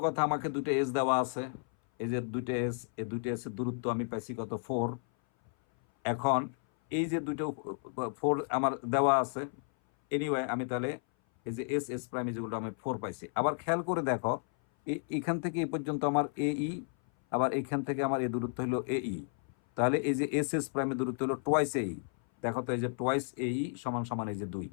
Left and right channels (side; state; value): right; silent; 56 dB below the other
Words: কথা, আমাকে দুটো এস দেওয়া আছে, এই যে দুইটা এস, এই দুইটা এস এর দূরত্ব আমি পাইছি কত 4। এখন এই যে দুটো 4 আমার দেওয়া আছে, এনিওয়ে আমি তাহলে এই যে এস এস প্রাইম যেগুলো আমি 4 পাইছি। আবার খেয়াল করে দেখো, এখান থেকে এই পর্যন্ত আমার এই, আবার এখান থেকে আমার এই দূরত্ব হলো এই, তাহলে এই যে এস এস প্রাইমের দূরত্ব হলো টোয়াইস এই। দেখো তো এই যে টোয়াইস এই সমান সমান এই যে 2,